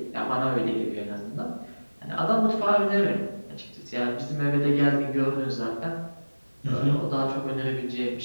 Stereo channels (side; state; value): both; inverted; correlation -1.00